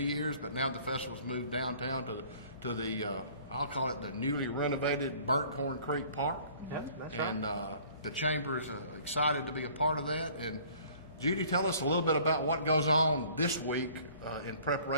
years, but now the festival's moved downtown to the I'll call it the newly renovated Burkhorn Creek Park. Yep, that's and right. The Chamber is excited to be a part of that. And Judy, tell us a little bit about what goes on this week in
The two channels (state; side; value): inverted; both; correlation -0.53